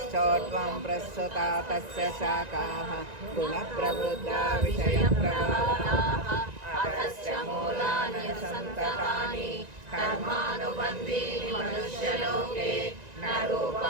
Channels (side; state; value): left; late; 1.9 ms